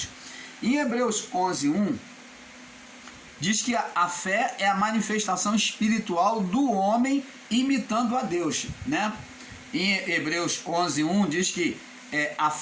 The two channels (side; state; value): both; identical; correlation 1.00